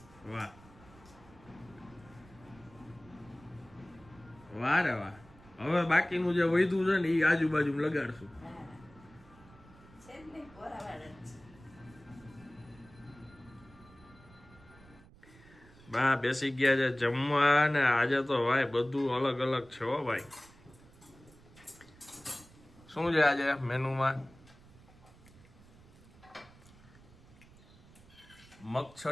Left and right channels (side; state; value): right; noise; rumble, 24 dB below the sound